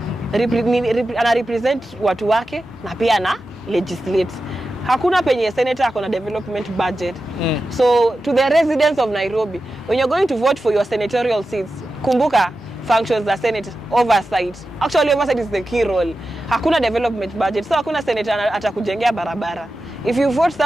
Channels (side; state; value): both; normal; correlation 0.92